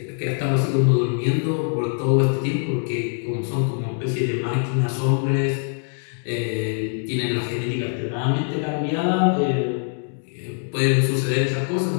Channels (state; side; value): silent; right; 56 dB below the other